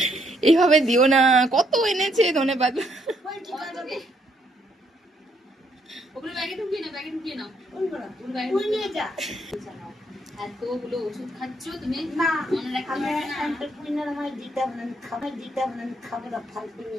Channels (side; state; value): both; normal; correlation 0.72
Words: এইভাবে দিও না, কত এনেছে ধনে পাতা। এতগুলো ওষুধ খাচ্ছ তুমি, মনে রাখতে